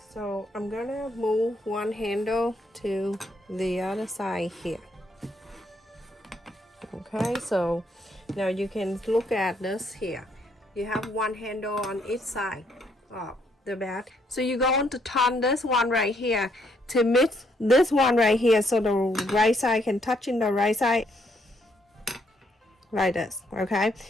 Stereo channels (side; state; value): both; normal; correlation 0.72